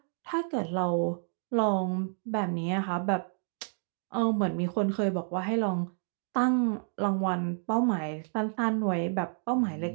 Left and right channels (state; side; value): silent; left; 58 dB below the other